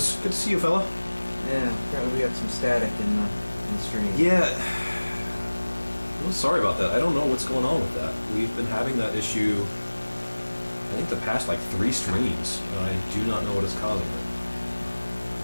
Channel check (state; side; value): inverted; both; correlation -1.00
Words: Good to see you, fella. Yeah, apparently we got some static in the stream. Yeah. Well, sorry about that. I don't know what's going on with that. We've been having that issue, I think, the past, 3 streams, and I do not know what is causing it.